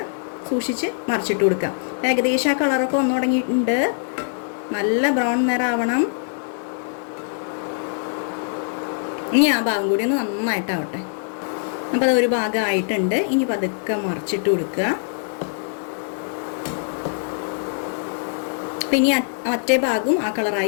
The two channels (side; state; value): right; silent; digital silence